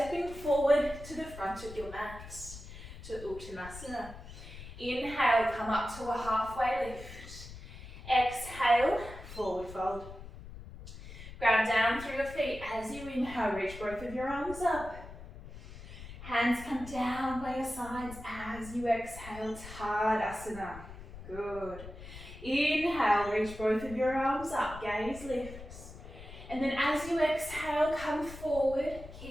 forward to the front of your mat, to Uttanasana. Inhale, come up to a halfway lift. Exhale, forward fold. Ground down through your feet. As you inhale, reach both of your arms up. Hands come down by your sides as you exhale, Tadasana. Good. Inhale, reach both of your arms up, gaze lifts. And then as you exhale, come forward,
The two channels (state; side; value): noise; left; rumble, 14 dB below the sound